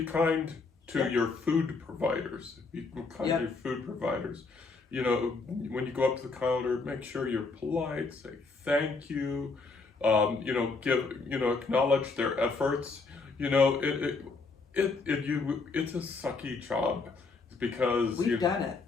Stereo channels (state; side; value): quieter; right; 4.1 dB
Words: kind to your food providers. Be kind to your food providers. When you go up to the counter, make sure you're polite. Say thank you. Acknowledge their efforts. It's a sucky job because we've done it.